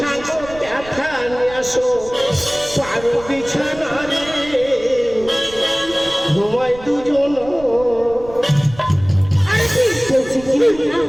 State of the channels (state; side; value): noise; right; rumble, 17 dB below the sound